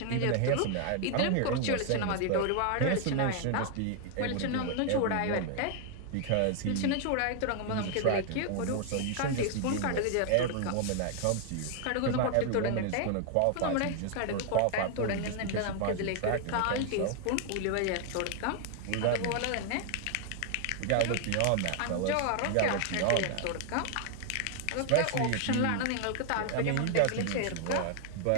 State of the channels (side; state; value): both; different; correlation 0.00